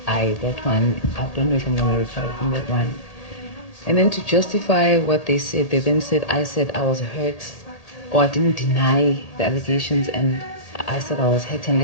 That one, I don't know if I'm going to recover from that one. And then to justify what they said, they then said I was hurt, or I didn't deny the allegations, and I said I was hurt and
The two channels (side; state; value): right; late; 1.8 ms